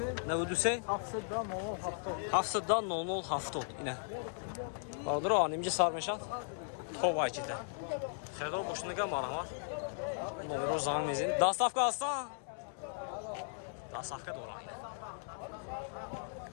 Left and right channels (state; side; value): silent; right; digital silence